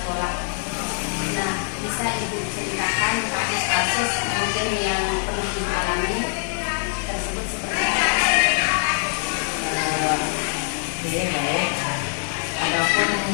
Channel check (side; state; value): right; silent; 55 dB below the other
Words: Nah, bisa Ibu ceritakan kasus-kasus mungkin yang pernah Ibu alami tersebut seperti apa? Baik. Adapun